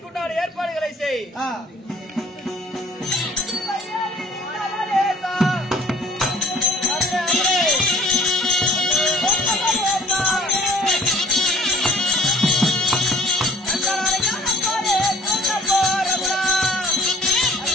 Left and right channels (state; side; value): normal; both; correlation 0.55